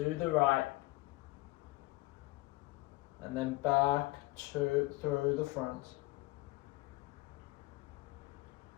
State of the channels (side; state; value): right; quieter; 21.0 dB